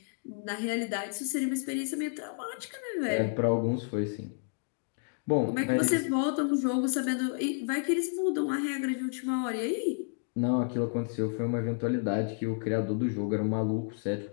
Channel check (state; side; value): silent; right; digital silence